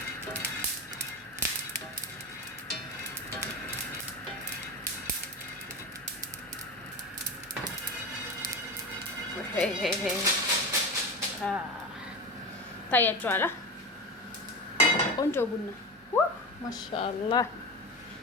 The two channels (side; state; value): both; normal; correlation 0.25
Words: ታያችኋል። ቆንጆ ቡና ማሻአላህ